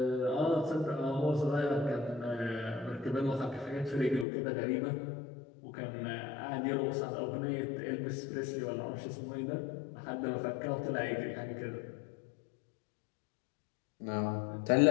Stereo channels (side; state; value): right; drops out; at 4.2 s